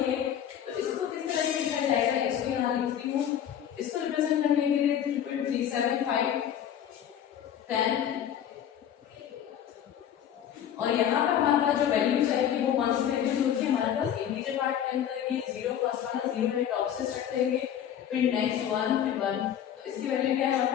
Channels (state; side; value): quieter; right; 9.8 dB